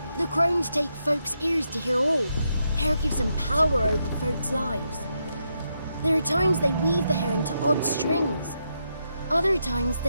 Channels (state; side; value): inverted; both; correlation -0.82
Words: The crones take folks' ears to hear all. Hair gives them power over folks' lives. There are times they weave the hair into odd strings. Other times